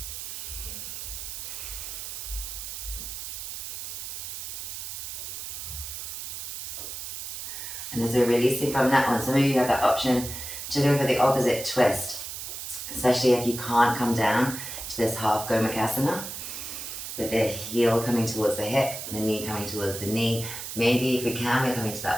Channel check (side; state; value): right; noise; hiss, 7 dB below the sound